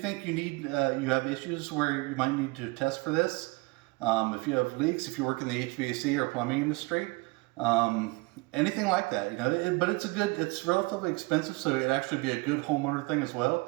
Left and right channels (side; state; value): left; quieter; 26.0 dB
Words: you have issues where you might need to test for this. If you have leaks, if you work in the HVAC or plumbing industry, anything like that, but it's relatively expensive, so it'd actually be a good homeowner thing as well.